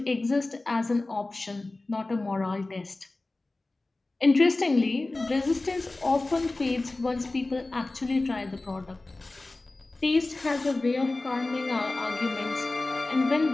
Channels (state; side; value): quieter; right; 3.1 dB